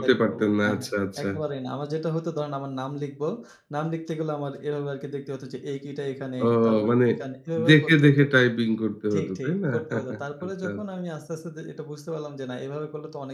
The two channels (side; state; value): both; identical; correlation 1.00